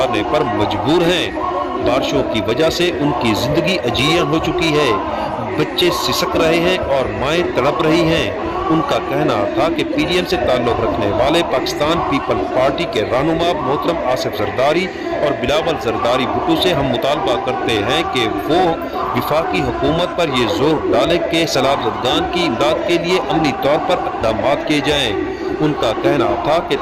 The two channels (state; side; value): identical; both; correlation 1.00